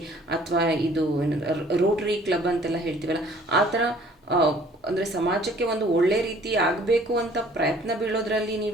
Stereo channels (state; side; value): normal; both; correlation 0.55